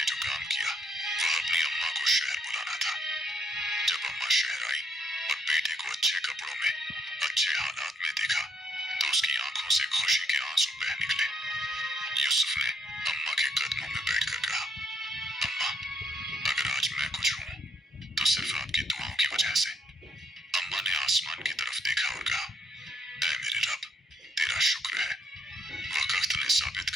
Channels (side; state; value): both; normal; correlation 0.72